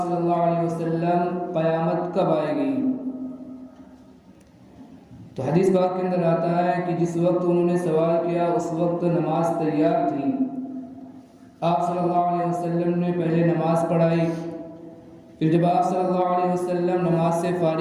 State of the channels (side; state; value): both; identical; correlation 1.00